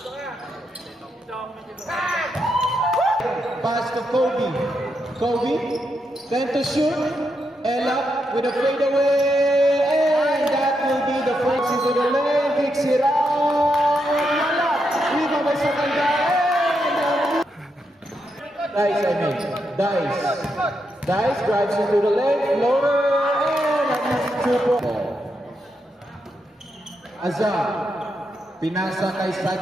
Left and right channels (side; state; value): both; normal; correlation 0.82